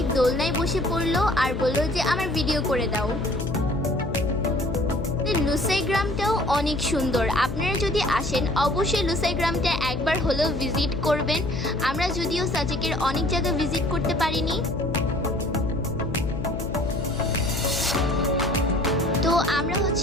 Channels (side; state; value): left; noise; hum, 6 dB below the sound